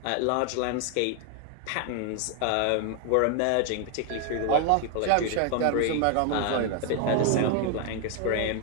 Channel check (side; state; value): both; different; correlation 0.00